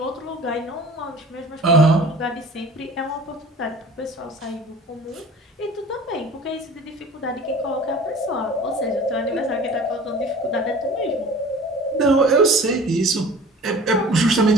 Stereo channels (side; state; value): both; normal; correlation 0.44